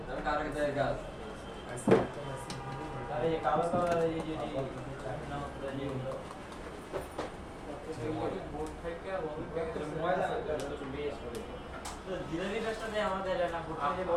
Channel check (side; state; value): both; identical; correlation 1.00